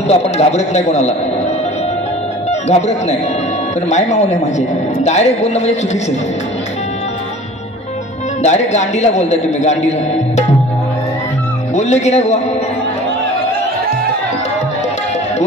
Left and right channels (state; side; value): normal; both; correlation 0.44